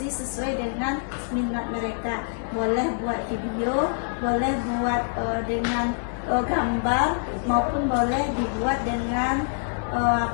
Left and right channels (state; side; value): silent; right; digital silence